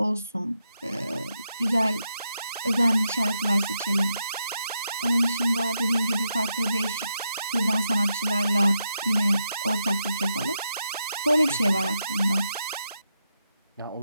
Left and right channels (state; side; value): inverted; both; correlation -0.84